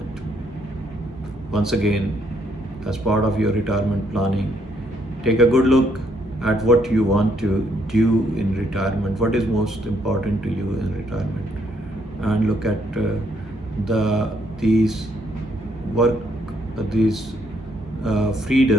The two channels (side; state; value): both; normal; correlation 0.71